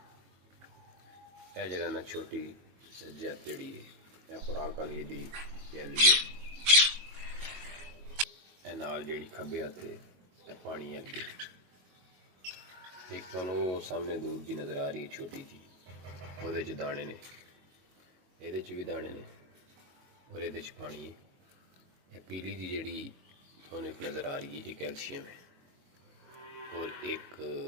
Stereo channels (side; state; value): left; late; 22 ms